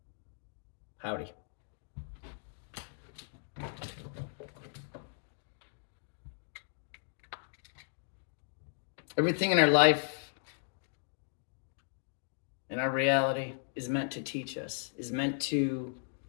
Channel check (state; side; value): silent; right; digital silence